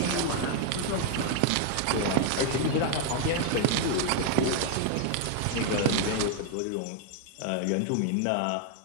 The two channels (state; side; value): different; both; correlation 0.00